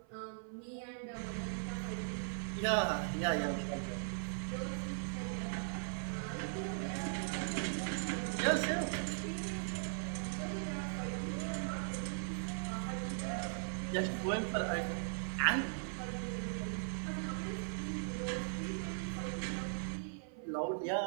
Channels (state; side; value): silent; left; 52 dB below the other